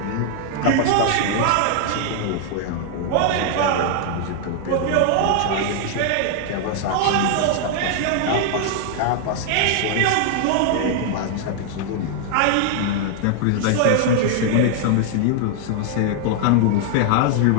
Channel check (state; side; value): different; both; correlation 0.00